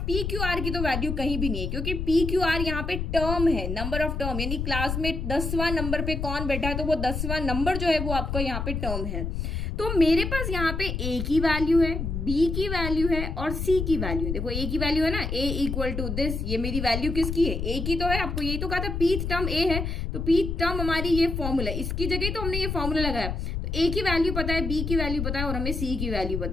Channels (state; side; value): noise; left; rumble, 3 dB below the sound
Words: पी क्यू आर की तो वैल्यू कहीं भी नहीं है, क्योंकि पी क्यू आर यहाँ पे टर्म है, नंबर ऑफ टर्म, यानी क्लास में 10वां नंबर पे कौन बैठा है तो वो 10वां नंबर जो है वो आपका यहाँ पे टर्म है। तो मेरे पास यहाँ पे a की वैल्यू है, b की वैल्यू है और c की वैल्यू है। देखो a की वैल्यू है ना, a इक्वल टू दिस, ये मेरी वैल्यू किसकी है, a की तो है। आपको यही तो कहा था पीथ टर्म a है, तो पीथ टर्म हमारी ये फॉर्मूला, इसकी जगह तो हमने ये फॉर्मूला लगाया। तो a की वैल्यू पता है, b की वैल्यू पता है और हमें c की वैल्यू